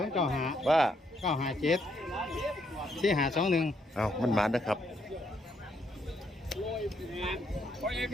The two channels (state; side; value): normal; both; correlation 0.74